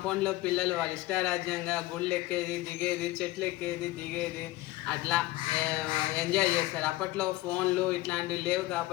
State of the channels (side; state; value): right; quieter; 18.4 dB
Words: పిల్లలు వాళ్ళ ఇష్టారాజ్యంగా గుళ్ళు ఎక్కేది, దిగేది, చెట్లు ఎక్కేది, దిగేది, అట్లా ఎంజాయ్ చేస్తారు. అప్పట్లో ఫోన్లు ఇట్లాంటివి లేవు